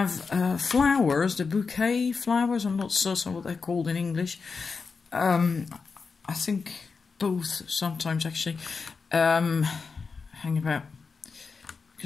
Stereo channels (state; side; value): quieter; right; 4.9 dB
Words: flowers, the bouquet flowers. I'm not certain what they're called in English. I think both sometimes, actually. Hang about.